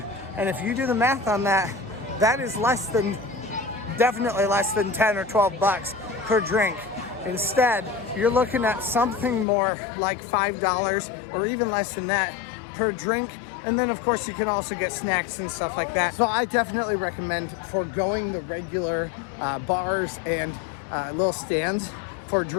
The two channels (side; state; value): right; drops out; at 9.5 s